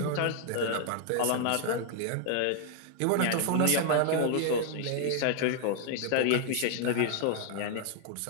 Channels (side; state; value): both; different; correlation 0.00